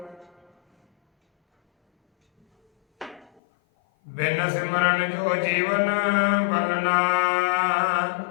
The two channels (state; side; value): drops out; right; at 3.4 s